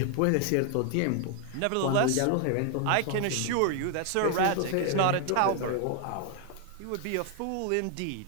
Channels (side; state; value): both; different; correlation 0.00